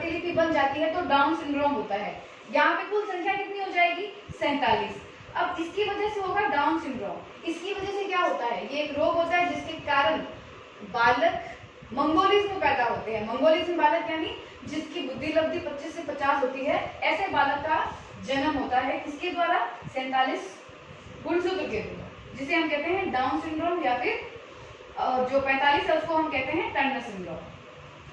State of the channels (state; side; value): identical; both; correlation 1.00